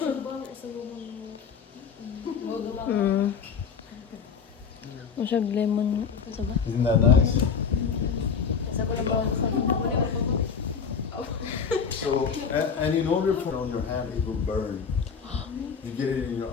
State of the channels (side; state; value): right; quieter; 6.3 dB